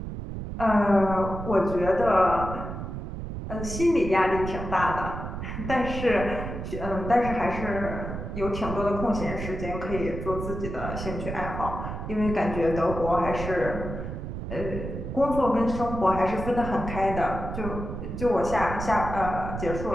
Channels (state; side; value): noise; right; rumble, 6 dB below the sound